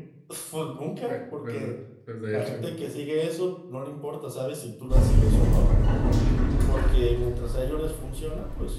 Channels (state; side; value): identical; both; correlation 1.00